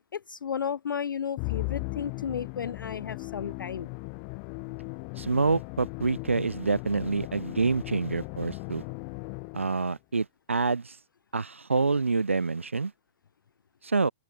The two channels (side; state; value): both; inverted; correlation -0.71